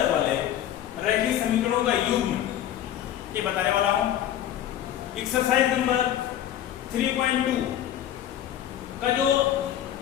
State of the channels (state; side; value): quieter; right; 11.3 dB